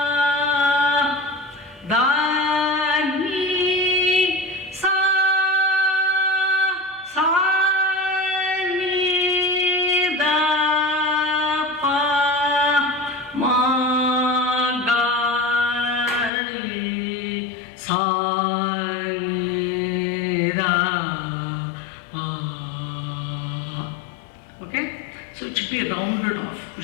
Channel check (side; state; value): right; drops out; at 16.3 s